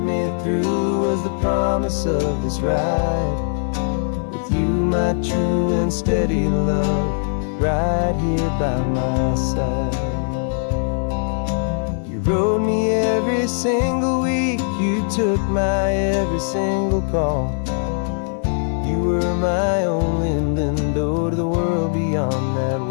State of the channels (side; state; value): right; silent; 56 dB below the other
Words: through was the promise of this ride with you, my true and steady love, right here by my side. You rode me every single week, you took my every single call. You were my only window to the world beyond that